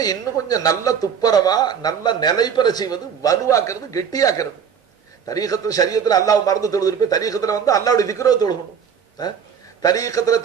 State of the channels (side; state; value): left; quieter; 7.4 dB